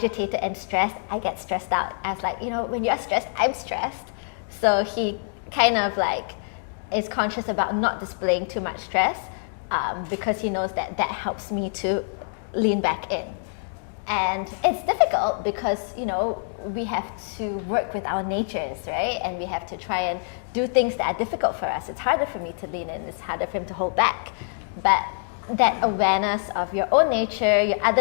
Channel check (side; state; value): right; silent; digital silence